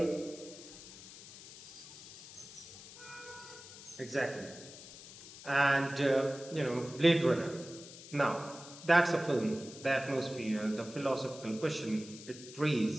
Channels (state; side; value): noise; left; hiss, 16 dB below the sound